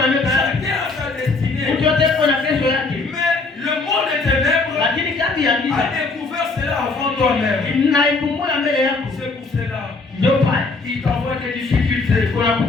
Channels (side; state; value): right; quieter; 3.8 dB